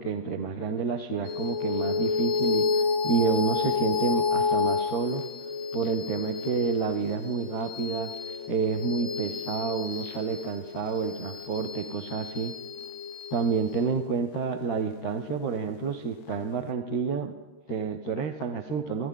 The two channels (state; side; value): late; right; 13 ms